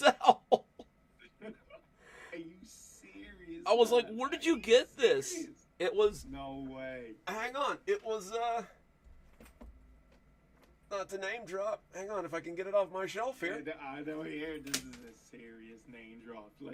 Are you serious? I was like, man? where did Are you get this? serious? It was, No way. hang on, it was, not to name drop. Hang on, if I can get it off my shelf here. I know here this is a serious name drop.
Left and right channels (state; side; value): identical; both; correlation 1.00